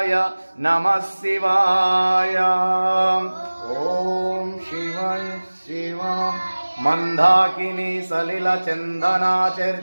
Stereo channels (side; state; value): both; inverted; correlation -1.00